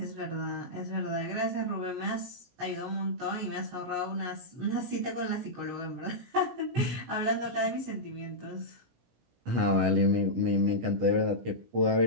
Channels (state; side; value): late; left; 17 ms